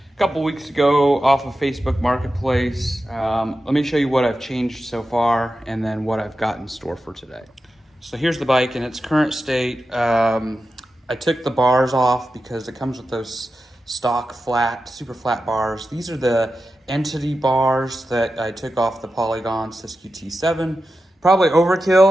couple weeks ago off of Facebook Marketplace. Let me show you what I've changed so far and then what I've got in store for today. So here's the bike in its current state. I took the bars off because it comes with those stock flat, super flat bars. These are the Entity bars that I took off the Polygon Siskiyou T7. Probably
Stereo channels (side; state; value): both; normal; correlation 0.91